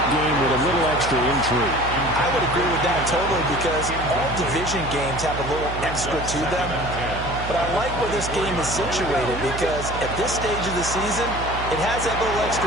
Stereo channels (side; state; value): right; noise; hum, 8 dB below the sound